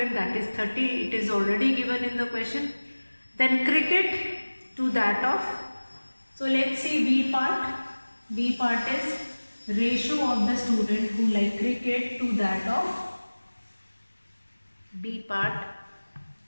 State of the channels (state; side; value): inverted; both; correlation -1.00